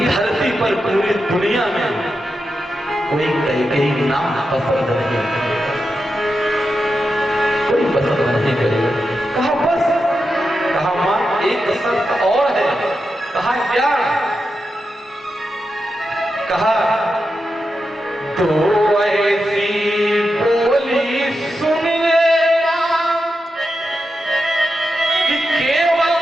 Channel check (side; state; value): both; normal; correlation 0.88